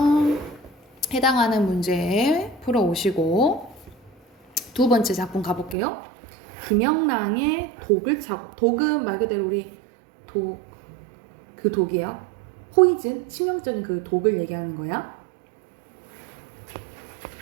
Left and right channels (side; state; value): left; drops out; at 5.8 s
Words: 해당하는 문제 풀어오시고 두 번째 작품 가볼게요. 김영랑의 독을 차고, 독은 말 그대로 우리 그 독이에요. 포이즌, 치명적인 그 독을 얘기하는 거야.